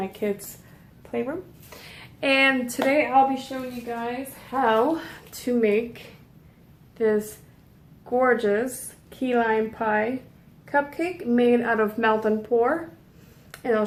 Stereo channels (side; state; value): both; identical; correlation 1.00